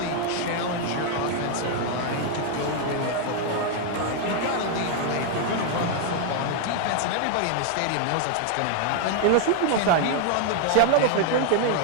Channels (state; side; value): different; both; correlation 0.00